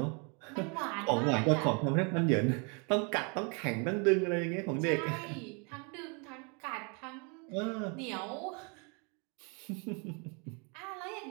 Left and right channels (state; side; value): quieter; left; 34.7 dB